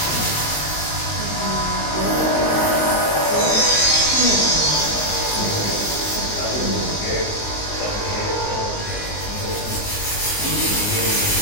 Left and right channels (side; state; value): right; late; 19 ms